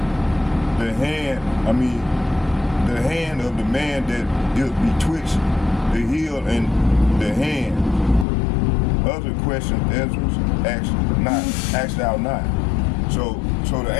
The hand of the man that is betwixt the heel and the hand. Other questions Ezra asked thou not. So So the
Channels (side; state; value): right; drops out; at 8.2 s